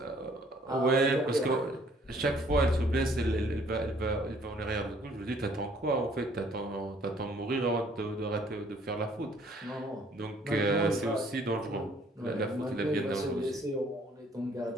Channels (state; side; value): normal; both; correlation 0.60